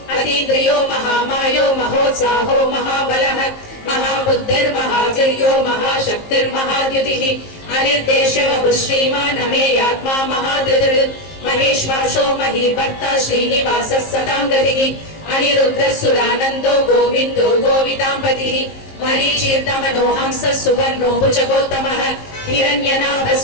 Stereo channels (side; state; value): right; late; 19 ms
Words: अतीन्द्रियो महामायो महोत्साहो महाबलः महाबुद्धिर्महावीर्यो महाशक्तिर्महाद्युतिः अनिर्देशवः श्रीमान् अमेयात्मा महाधृतिः महेश्वासो महीभर्ता श्रीनिवासः सतां गतिः अनिरुद्धः सुरानन्दो गोविन्दो गोविताम्पतिः मरीचीर्णमनो हंसः सुवर्णो भुजगोत्तमः हिरण्यनाभः